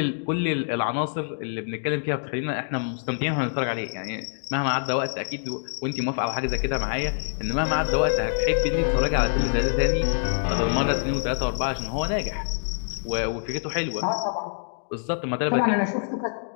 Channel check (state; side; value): silent; right; digital silence